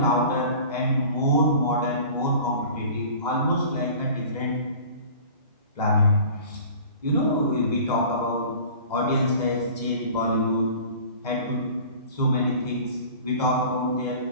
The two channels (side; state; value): both; inverted; correlation -0.43